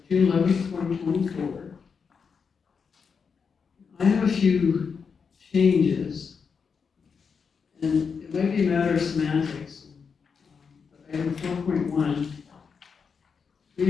June 11th, 2024. I have a few changes, and it might be a matter of semantics. But item 4.1,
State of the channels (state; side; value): quieter; right; 5.9 dB